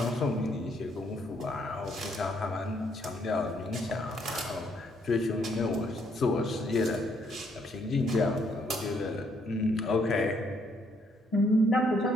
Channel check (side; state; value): both; normal; correlation 0.70